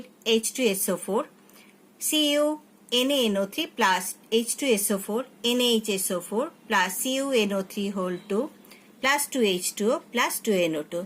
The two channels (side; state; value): both; identical; correlation 1.00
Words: H2SO4, CuNaNO3 plus H2SO4, NaHSO4 plus CuNO3 whole 2 plus 2H2O plus 2NO2.